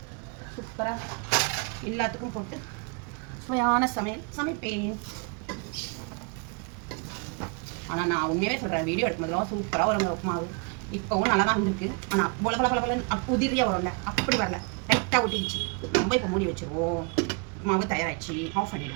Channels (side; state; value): left; quieter; 33.4 dB